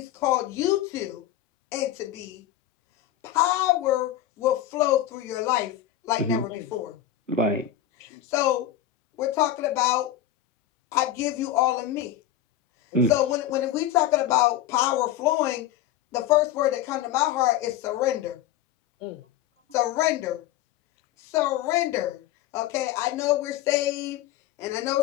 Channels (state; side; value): quieter; right; 11.5 dB